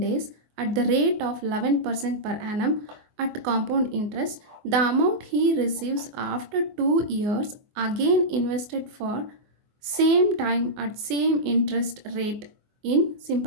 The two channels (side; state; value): left; late; 24 ms